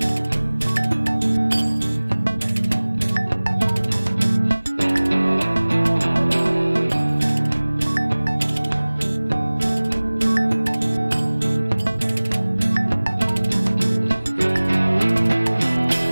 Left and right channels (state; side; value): inverted; both; correlation -1.00